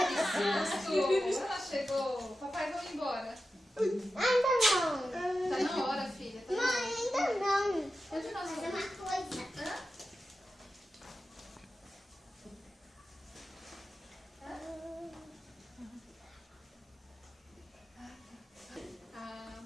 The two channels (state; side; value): normal; both; correlation 0.92